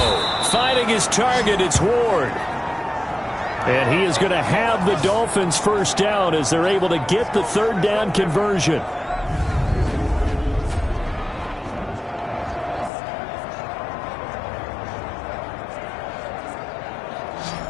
Finding his target, it's Ward. And he is going to have the Dolphins first down as they're able to get the 3rd down conversion.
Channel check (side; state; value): right; drops out; at 12.9 s